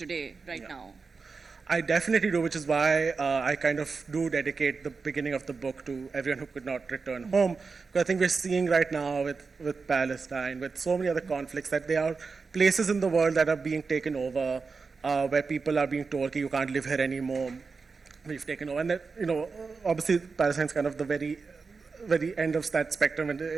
right now? I definitely do, which is why I kind of do dedicate the beginning of the book to everyone who could not return home. Because I think we're seeing right now with Palestine, with so many other conflicts, that there are places in the world that are being taken over, where people are being told, okay, you can't live here anymore. We've taken over. And that, obviously Palestine's kind of the very end of that spectrum, and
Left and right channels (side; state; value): left; quieter; 4.7 dB